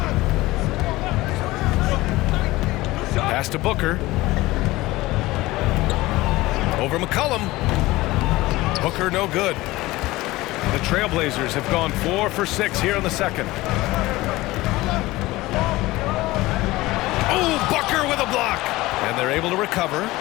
Pass to Booker. Over McCollum. Booker no good. The Trailblazers have gone 4 for 6 here in the second. Oh, Booker with a block. And they're able to recover.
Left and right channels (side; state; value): right; quieter; 19.0 dB